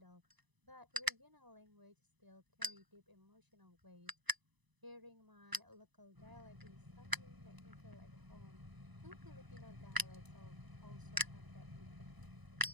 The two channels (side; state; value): left; late; 1.0 ms